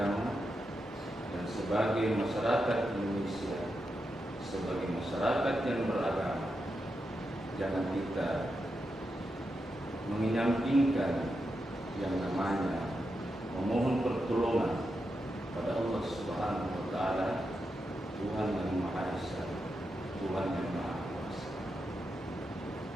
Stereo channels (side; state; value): both; normal; correlation 0.87